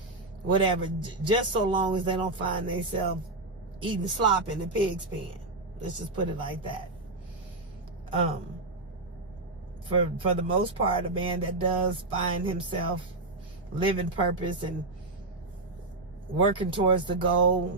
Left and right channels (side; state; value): left; quieter; 3.0 dB